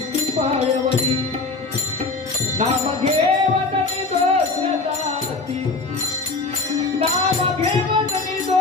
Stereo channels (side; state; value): right; quieter; 3.7 dB